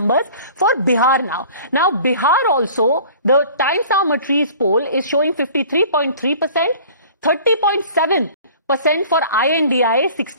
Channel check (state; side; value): inverted; both; correlation -0.46